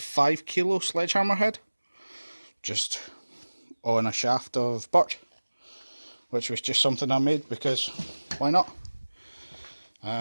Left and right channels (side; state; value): both; inverted; correlation -1.00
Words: kilo sledgehammer head, just on a shaft of birch, which was just something I made because why not?